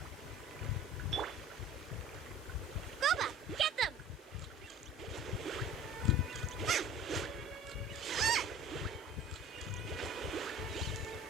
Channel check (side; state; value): both; normal; correlation 0.44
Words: Goba, get them!